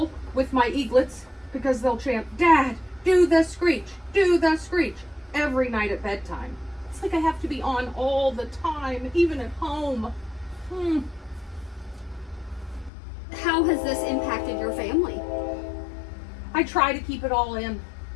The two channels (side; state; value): right; drops out; at 12.9 s